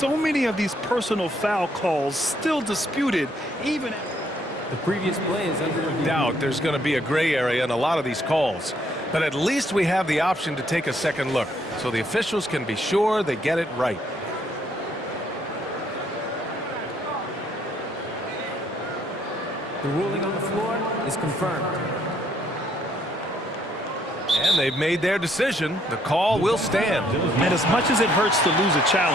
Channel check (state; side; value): normal; both; correlation 0.69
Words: many of these personal foul calls still disputed, even The previous play is under review. Doubt there's going to be a gray area in a lot of these calls. But at least we have the option to take a second look, so the officials can be sure they get it right. The ruling on the floor is confirmed. And they've made their decision. The call will stand. And as much as it hurts to lose a